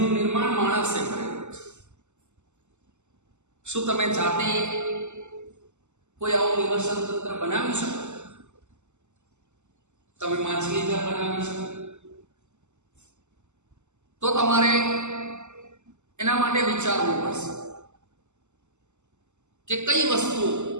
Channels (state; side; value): late; left; 0.83 ms